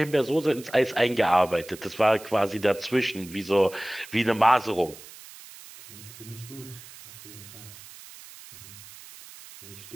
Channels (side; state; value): right; noise; hiss, 18 dB below the sound